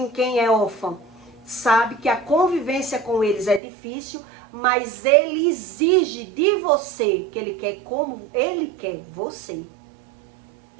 Quem é órfão sabe que a convivência com eles é difícil, mas ele exige de você que ele quer como ele quer você.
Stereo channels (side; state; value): left; drops out; at 3.6 s